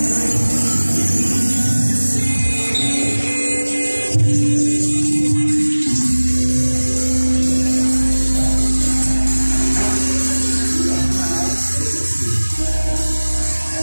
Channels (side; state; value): both; inverted; correlation -1.00